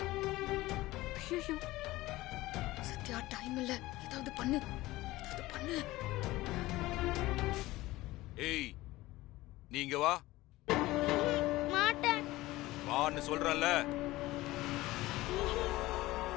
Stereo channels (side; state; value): right; quieter; 18.3 dB